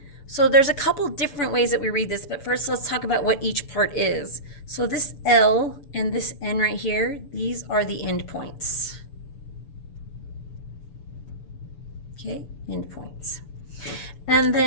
So there's a couple different ways that we read this, but first let's talk about what each part is. So this L and this N right here, these are the endpoints. Okay, endpoints. And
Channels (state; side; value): late; right; 6.9 ms